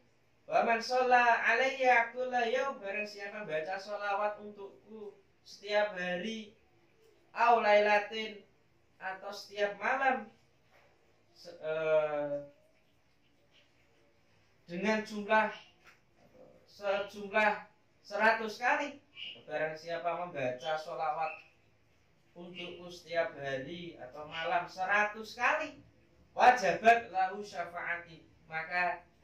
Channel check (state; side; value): identical; both; correlation 1.00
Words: Wa man shalla alayya kulla yaum, barang siapa baca sholawat untukku setiap hari, au lailatin, atau setiap malam, dengan sejumlah 100 kali. Barang siapa membaca sholawat untukku setiap hari atau malam 100 kali, wajabat lahu syafaati, maka